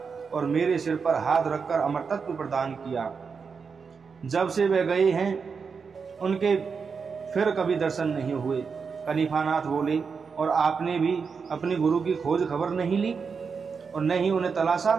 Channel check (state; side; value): quieter; left; 5.5 dB